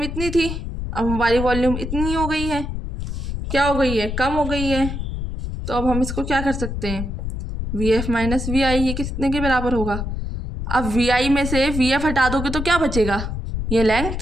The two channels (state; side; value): noise; left; rumble, 5 dB below the sound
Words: इतनी थी, अब हमारी वॉल्यूम इतनी हो गई है, क्या हो गई है, कम हो गई है। तो अब हम इसको क्या कर सकते हैं, VF माइनस VI, ये कितने के बराबर होगा। अब VI में से VF हटा दोगे तो क्या बचेगा, ये